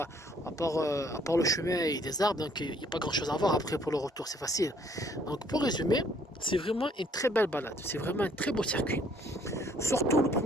à part le chemin et des arbres, donc il n'y a pas grand chose à voir après pour le retour, c'est facile. Donc, pour résumer, c'est vraiment une très belle balade. C'est vraiment un très beau circuit. Surtout le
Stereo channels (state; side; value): normal; both; correlation 0.63